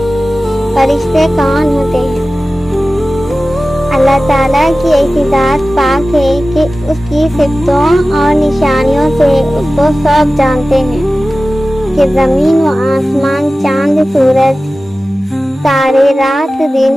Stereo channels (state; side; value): normal; both; correlation 0.96